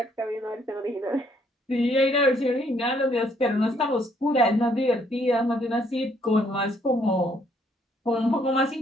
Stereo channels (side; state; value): both; normal; correlation 0.68